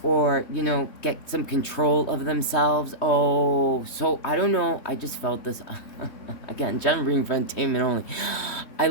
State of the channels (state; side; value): late; right; 3.2 ms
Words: or, you know, get some control of themselves. Oh, so, I don't know, I just felt this, again, general reading for entertainment only. I